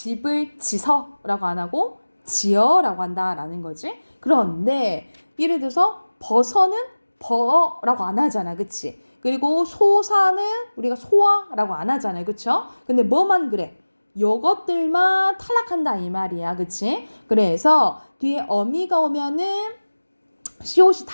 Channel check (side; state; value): both; inverted; correlation -1.00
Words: 지서라고 안 하고 지어라고 한다라는 거지. 그런데 예를 들어서 버서는 버라고 안 하잖아, 그치? 그리고 소사는 우리가 소아라고 안 하잖아요, 그쵸? 근데 뭐만 그래? 요것들만 탈락한다 이 말이야, 그치? 그래서 뒤에 어미가 오면은 시옷이